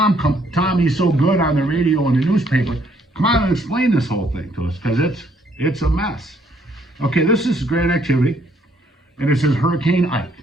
come. Tom, he's so good on the radio and the newspaper. Come on and explain this whole thing to us, because it's a mess. Okay, this is grant activity, and it says Hurricane Ike.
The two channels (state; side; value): normal; both; correlation 0.67